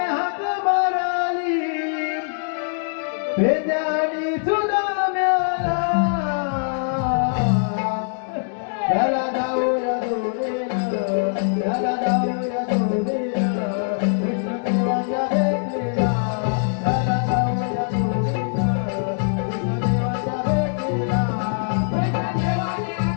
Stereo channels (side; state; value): right; silent; digital silence